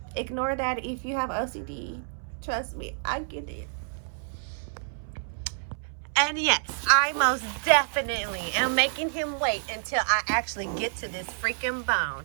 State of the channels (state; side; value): silent; left; 59 dB below the other